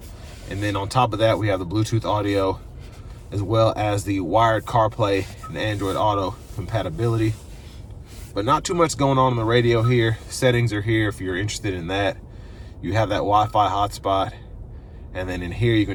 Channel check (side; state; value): both; identical; correlation 1.00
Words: And then on top of that, we have the Bluetooth audio, as well as the wired CarPlay and Android Auto compatibility. But not too much going on the radio here. Settings are here if you're interested in that. You have that Wi-Fi hotspot. And then in here, you